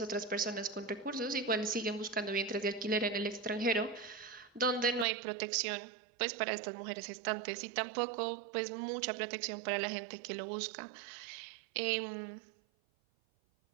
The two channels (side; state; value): left; drops out; at 5.1 s